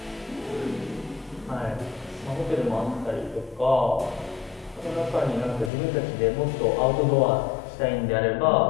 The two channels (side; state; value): right; drops out; at 5.7 s